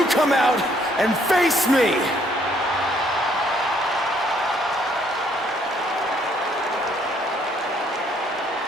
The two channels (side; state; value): both; normal; correlation 0.66